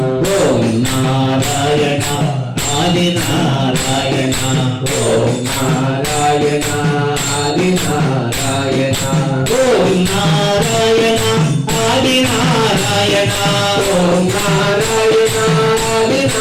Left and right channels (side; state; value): both; identical; correlation 1.00